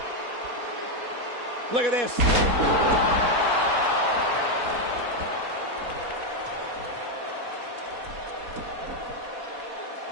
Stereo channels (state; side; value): late; left; 4.2 ms